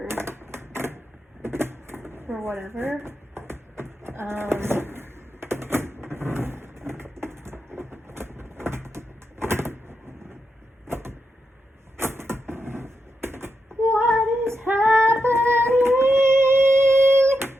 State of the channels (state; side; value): normal; both; correlation 0.86